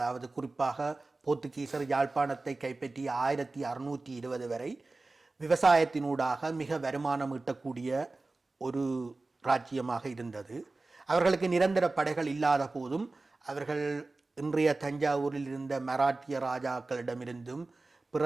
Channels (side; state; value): left; quieter; 3.3 dB